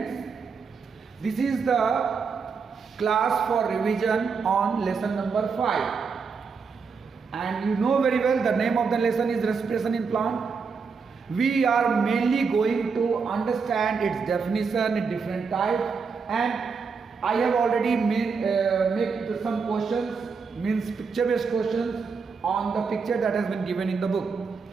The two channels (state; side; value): quieter; left; 5.3 dB